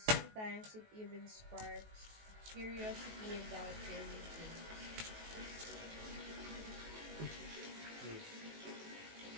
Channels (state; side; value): late; left; 19 ms